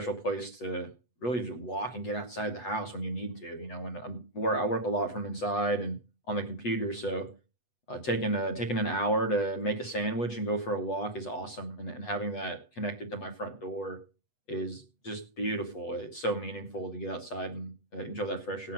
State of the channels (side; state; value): right; late; 8.1 ms